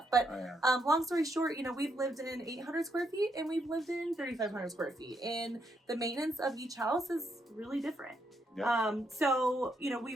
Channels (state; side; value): normal; both; correlation 0.77